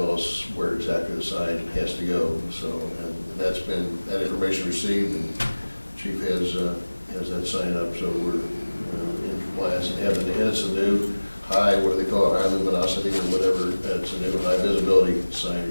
us where exactly the sign has to go, so, and that's been, that information received, and Chief has that sign up, so we're in compliance, and it's a new high, what do they call it, high luminosity or whatever, it's a new high visibility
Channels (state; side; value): inverted; both; correlation -1.00